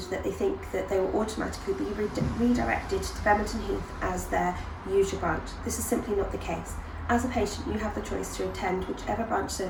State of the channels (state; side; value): identical; both; correlation 1.00